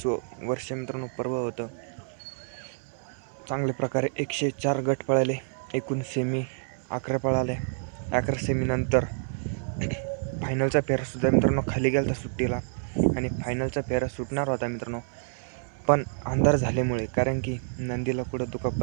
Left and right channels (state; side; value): silent; left; 59 dB below the other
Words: वर्ष मित्रांनो पर्व होतं. चांगल्या प्रकारे 104 गट पळाले, एकूण सेमी 11 पळाले. 11 सेमीनंतर फायनलचा फेरासुद्धा मित्रांनो खाली गेला होता सुट्टीला आणि फायनलचा फेरा सुटणार होता मित्रांनो, पण अंधार झाल्यामुळे कारण की नंदीला कुठं